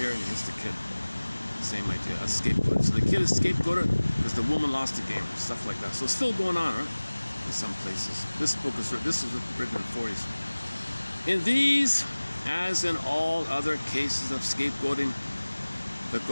and he hits the kid. Same idea, a scapegoat. So the kid is scapegoated because the woman lost the game, stuff like that. So it's still going on, right? In some places. This was written in the 40s. In these, as in all other cases of scapegoating, the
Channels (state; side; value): inverted; both; correlation -1.00